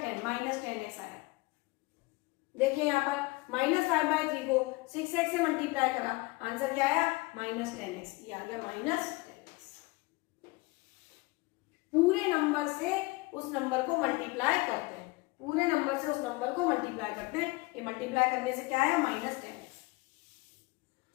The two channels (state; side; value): quieter; right; 23.7 dB